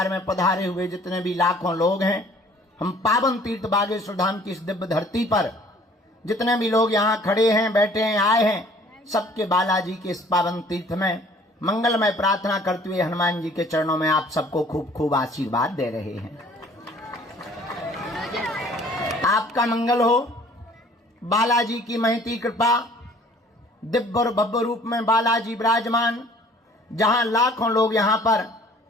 में पधारे हुए जितने भी लाखों लोग हैं, हम पावन तीर्थ बागेश्वर धाम की इस दिव्य धरती पर जितने भी लोग यहाँ खड़े हैं, बैठे हैं, आए हैं, सबके बालाजी के इस पावन तीर्थ में मंगलमय प्रार्थना करते हुए हनुमान जी के चरणों में आप सबको खूब खूब आशीर्वाद दे रहे हैं। आपका मंगल हो। बालाजी की महती कृपा, दिव्य और भव्य रूप में बालाजी विराजमान। जहां लाखों लोग यहां पर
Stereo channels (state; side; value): normal; both; correlation 0.54